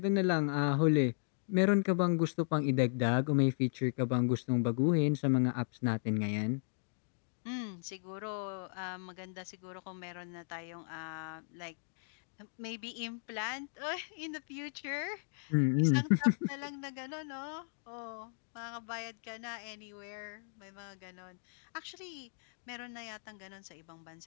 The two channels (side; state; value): right; silent; digital silence